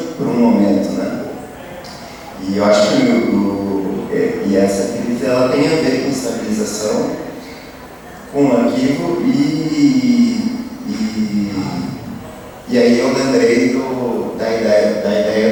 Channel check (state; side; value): identical; both; correlation 1.00